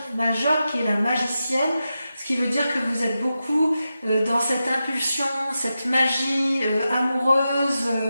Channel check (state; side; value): inverted; both; correlation -0.90